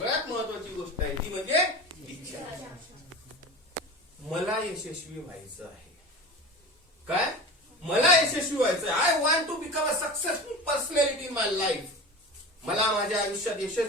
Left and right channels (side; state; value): both; normal; correlation 0.32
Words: महत्वाची गोष्ट आहे ती म्हणजे इच्छा. मला यशस्वी व्हायचं आहे. काय? मला यशस्वी व्हायचं आहे. I want to become a successful personality in my life. मला माझ्या आयुष्यात